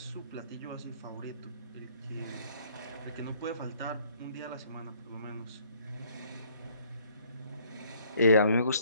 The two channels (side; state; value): both; inverted; correlation -0.61